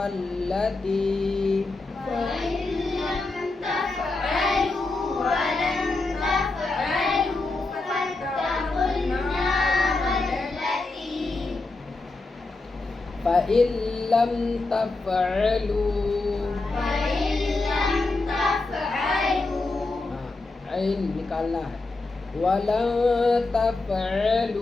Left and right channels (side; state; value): right; quieter; 3.3 dB